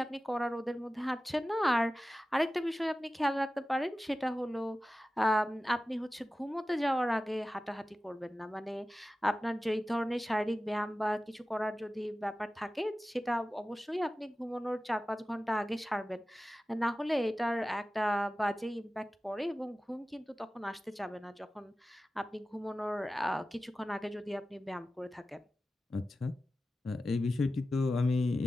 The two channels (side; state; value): both; normal; correlation 0.95